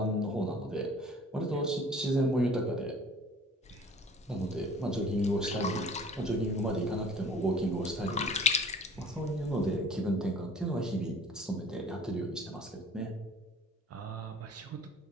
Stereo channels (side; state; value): both; normal; correlation 0.49